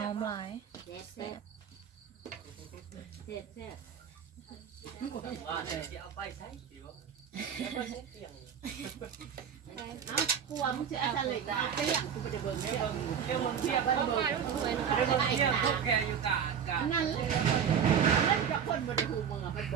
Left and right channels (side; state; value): left; quieter; 7.7 dB